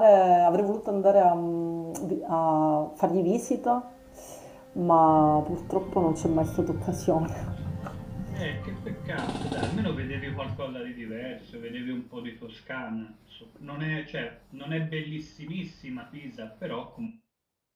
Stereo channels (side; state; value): both; identical; correlation 1.00